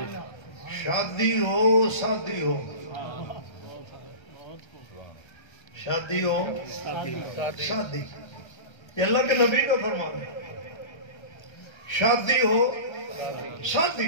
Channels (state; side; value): late; right; 1.3 ms